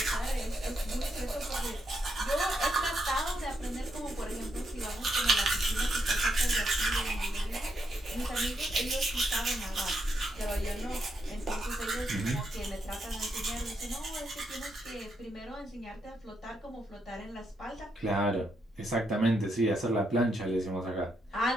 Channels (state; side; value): normal; both; correlation 0.79